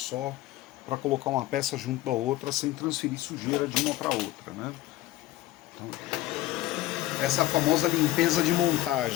para colocar uma peça junto da outra sem transferir sujeira de uma para outra, né? Então, essa é a famosa limpeza de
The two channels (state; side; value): quieter; right; 16.0 dB